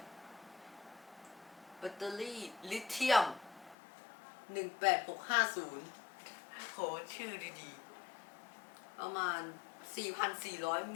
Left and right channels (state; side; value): drops out; right; at 3.8 s